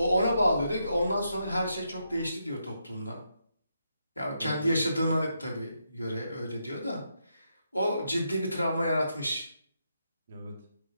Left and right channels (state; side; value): inverted; both; correlation -0.81